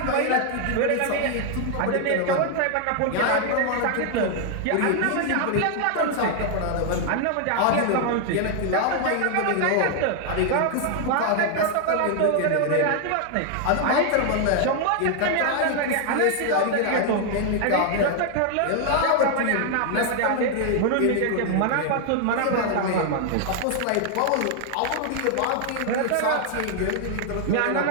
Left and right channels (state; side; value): different; both; correlation 0.00